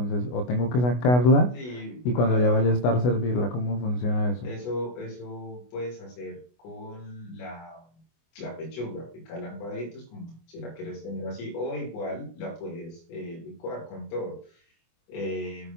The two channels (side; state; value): right; late; 24 ms